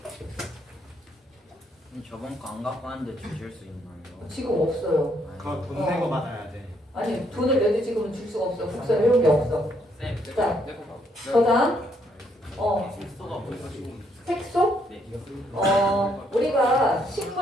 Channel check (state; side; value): normal; both; correlation 0.72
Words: 저번 거 안 갖고 왔는데 주실 수 있나요? 지금 없어요. 그거 돈 내고 받아야 돼. 아니, 돈을 내도 지금은 줄 수가 없어. 국사를 해온 게 없어. 자, 저장. 색소? 우리가